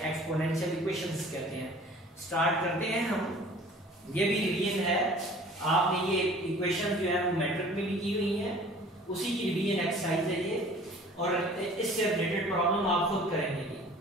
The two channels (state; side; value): normal; both; correlation 0.48